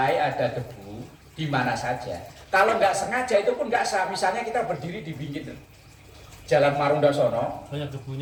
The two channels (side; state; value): both; identical; correlation 1.00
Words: ada debu di mana saja. Kalau nggak sengaja itu pun nggak sah. Misalnya kita berdiri di pinggir Jalan Marunda sono. Banyak